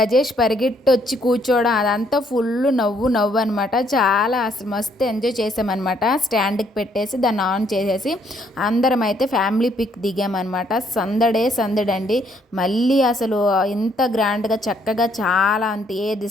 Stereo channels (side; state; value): both; normal; correlation 0.68